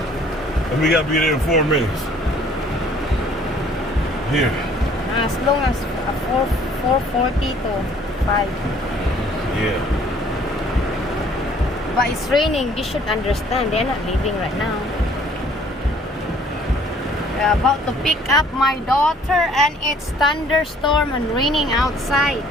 We gotta be there in 4 minutes. Here. As long as 4:40 to 5. Yeah. But it's raining. You should understand. They're not leaving right now. We're about to pick up my daughter, and it's thunderstorm and raining outside.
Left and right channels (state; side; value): normal; both; correlation 0.57